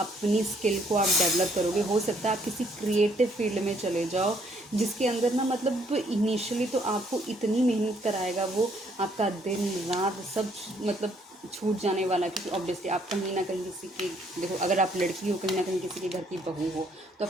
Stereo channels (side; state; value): both; normal; correlation 0.67